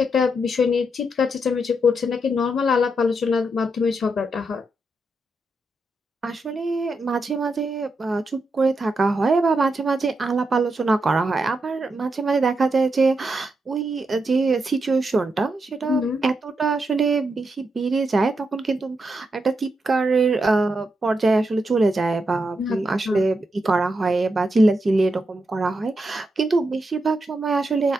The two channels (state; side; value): normal; both; correlation 0.84